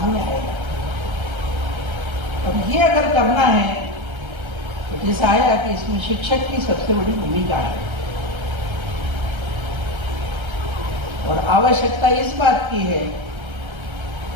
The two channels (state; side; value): late; left; 1.3 ms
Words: आएगा। अब ये अगर करना है तो जैसा आया कि इसमें शिक्षक की सबसे बड़ी भूमिका है। और आवश्यकता इस बात की है